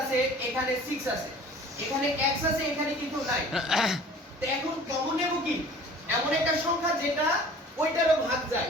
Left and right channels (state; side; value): normal; both; correlation 0.47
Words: আছে, এখানে 6 আছে, এখানে x আছে, এখানে কিন্তু নাই। তো এখন কমন নেব কি, এমন একটা সংখ্যা যেটা ওইটারও ভাগ যায়,